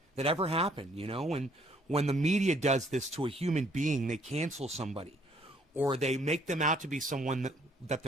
that ever happened, you know? When the media does this to a human being, they cancel somebody. Or they make them out to be someone that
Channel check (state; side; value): normal; both; correlation 0.64